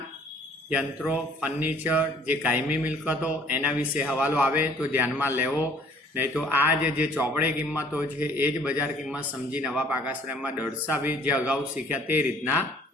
યંત્રો, ફર્નિચર, જે કાયમી મિલકતો, એના વિશે હવાલો આવે તો ધ્યાનમાં લેવો, નહીં તો આ જે ચોપડે કિંમતો છે એ જ બજાર કિંમત સમજી નવા પાકા શ્રેયમાં દર્શાવી, જે અગાઉ શીખ્યા તે રીતના।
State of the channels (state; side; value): normal; both; correlation 0.57